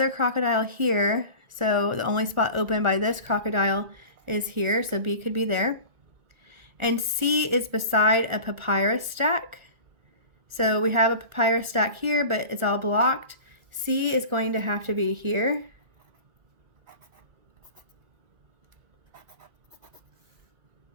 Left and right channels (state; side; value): late; left; 1.4 ms